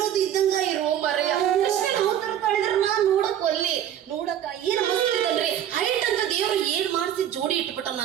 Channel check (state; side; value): quieter; left; 10.4 dB